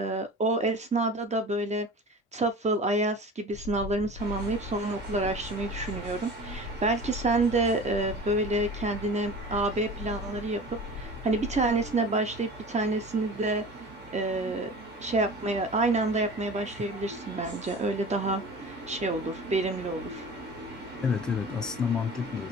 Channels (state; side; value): normal; both; correlation 0.37